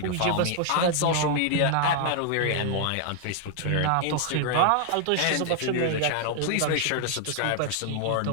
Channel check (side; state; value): both; different; correlation 0.00